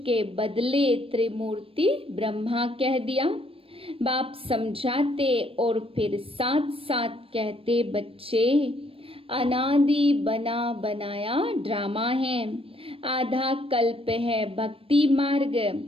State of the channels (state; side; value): late; left; 0.27 ms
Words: के बदले त्रिमूर्ति ब्रह्मा कह दिया। बाप समझाते और फिर साथ साथ कहते बच्चे अनादि बना बनाया ड्रामा है। आधा कल्प है भक्ति मार्ग